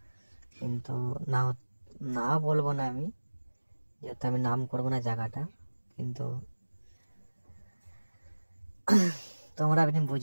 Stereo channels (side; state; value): both; inverted; correlation -1.00